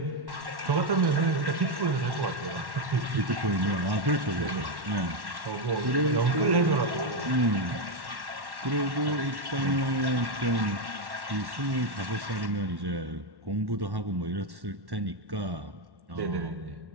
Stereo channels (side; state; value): left; late; 1.1 ms